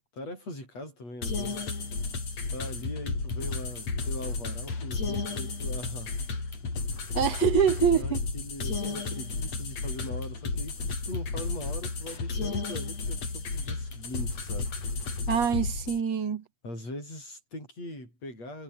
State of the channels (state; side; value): late; right; 8.3 ms